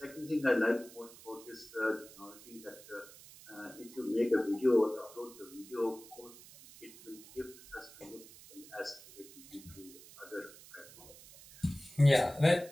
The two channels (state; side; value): noise; right; hiss, 19 dB below the sound